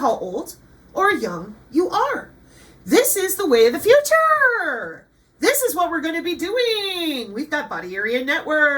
old or young you are. This is the way of the future. This is what we're going to be doing. We've got body area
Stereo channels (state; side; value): identical; both; correlation 1.00